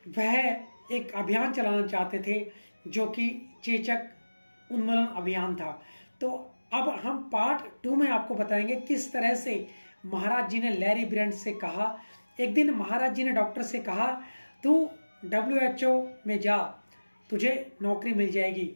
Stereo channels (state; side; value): inverted; both; correlation -1.00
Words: वह एक अभियान चलाना चाहते थे जो कि चेचक उन्मूलन अभियान था। तो अब हम पार्ट 2 में आपको बताएंगे किस तरह से महाराज जी ने लैरी ब्रियंट से कहा। एक दिन महाराज जी ने डॉक्टर से कहा, तू WHO में जा, तुझे नौकरी मिल जाएगी।